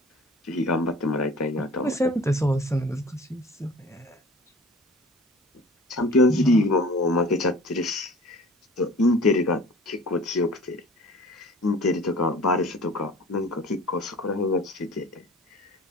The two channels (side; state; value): both; normal; correlation 0.44